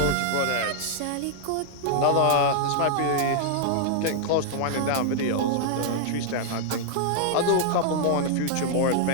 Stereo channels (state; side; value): different; both; correlation -0.01